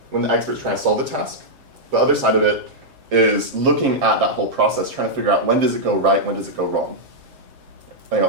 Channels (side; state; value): left; late; 7.5 ms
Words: when the expert's trying to solve the task. The other side of it is looking at that whole process, trying to figure out when does it go right, when does it go wrong.